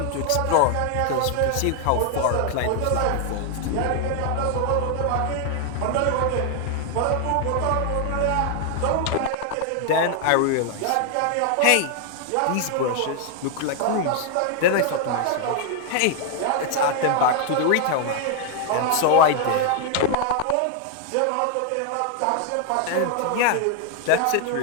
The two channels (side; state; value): both; different; correlation 0.00